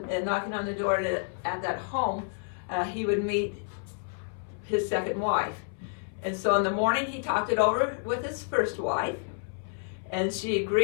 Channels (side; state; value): right; silent; 58 dB below the other